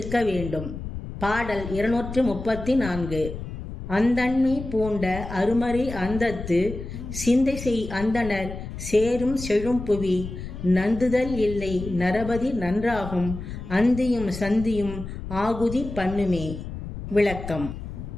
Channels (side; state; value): left; noise; rumble, 9 dB below the sound